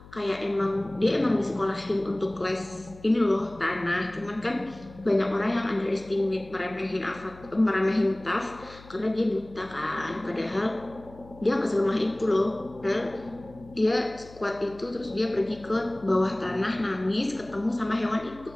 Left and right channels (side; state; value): left; noise; hum, 20 dB below the sound